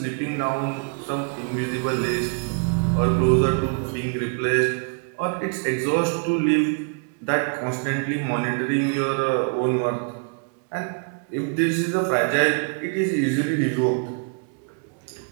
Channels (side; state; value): left; quieter; 38.8 dB